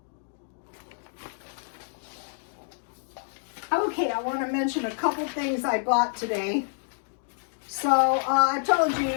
Okay, I want to mention a couple things I bought today. So I told you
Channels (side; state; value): right; silent; digital silence